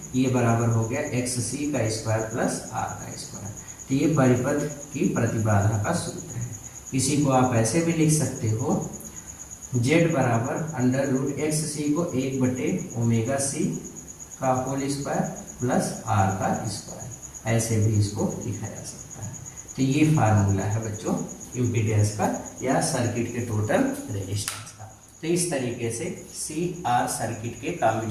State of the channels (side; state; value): both; identical; correlation 1.00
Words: ये बराबर हो गया एक्स सी का स्क्वायर प्लस आर का स्क्वायर। तो ये परिपथ की प्रतिबाधा का सूत्र है। इसी को आप ऐसे भी लिख सकते हो, जेड बराबर अंडर रूट एक्स सी को 1 बटे ओमेगा सी का होल स्क्वायर प्लस आर का स्क्वायर, ऐसे भी इसको लिखा जा सकता है। तो ये फार्मूला है बच्चों इम्पीडेंस का या सर्किट के टोटल रेजिस्टेंस का। तो इस तरीके से सी आर सर्किट के